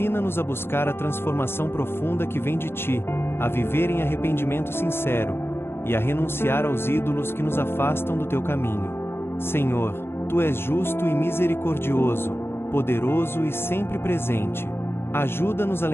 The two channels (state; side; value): late; right; 0.11 ms